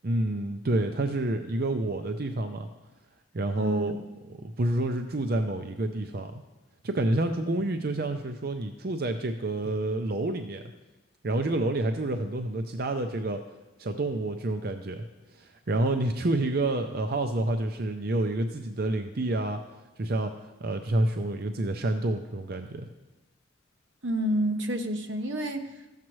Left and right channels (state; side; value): normal; both; correlation 0.59